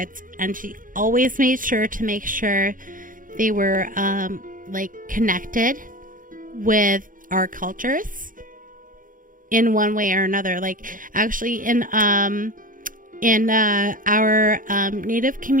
and she always made sure to make sure they were like connected with our cultures in one way or another. Like actually in our native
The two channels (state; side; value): late; left; 0.39 ms